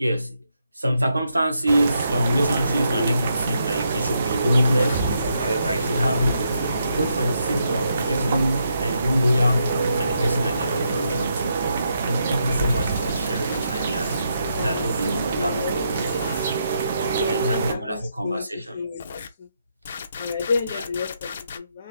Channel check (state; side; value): inverted; both; correlation -0.80